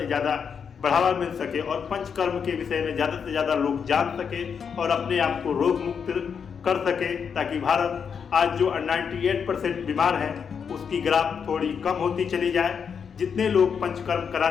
ज़्यादा बढ़ावा मिल सके और पंचकर्म के विषय में ज़्यादा से ज़्यादा लोग जान सके और अपने आप को रोग मुक्त कर सके, ताकि भारत आज जो 98% बीमार है उसकी ग्राफ थोड़ी कम होती चली जाए। जितने लोग पंचकर्म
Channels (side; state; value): right; quieter; 6.7 dB